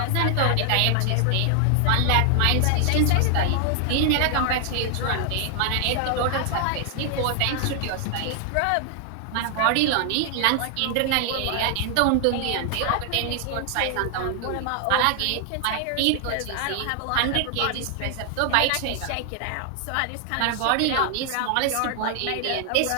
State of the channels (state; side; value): different; both; correlation 0.00